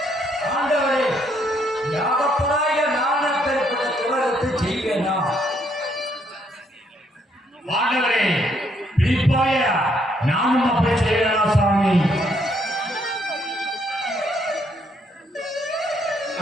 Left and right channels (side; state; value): both; normal; correlation 0.71